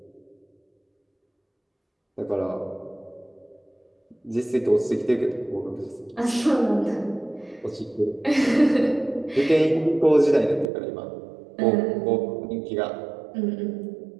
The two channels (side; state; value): left; drops out; at 10.7 s